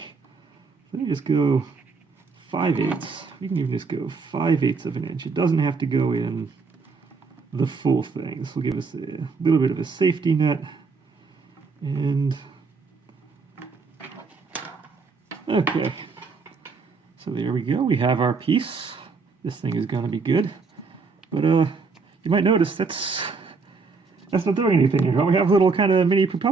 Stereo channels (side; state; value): left; quieter; 4.6 dB